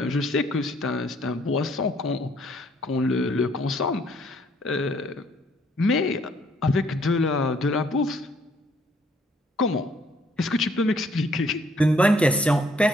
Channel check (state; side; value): normal; both; correlation 0.65